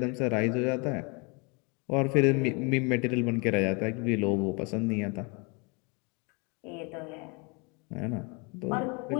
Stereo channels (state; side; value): quieter; right; 31.4 dB